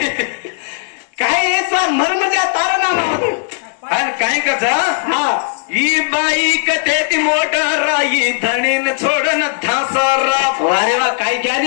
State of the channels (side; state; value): right; silent; digital silence